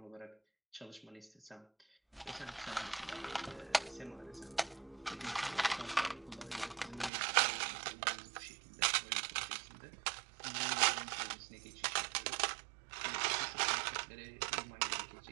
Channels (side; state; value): left; drops out; at 7.1 s